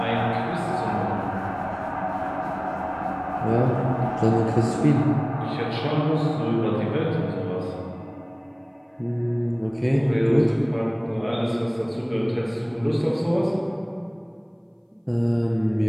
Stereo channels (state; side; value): identical; both; correlation 1.00